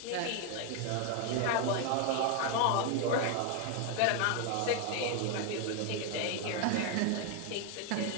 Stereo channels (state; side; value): different; both; correlation 0.01